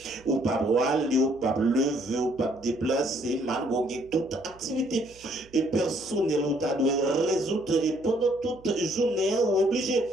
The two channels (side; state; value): right; noise; hum, 25 dB below the sound